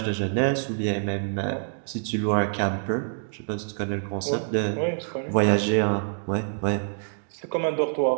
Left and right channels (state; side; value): silent; left; digital silence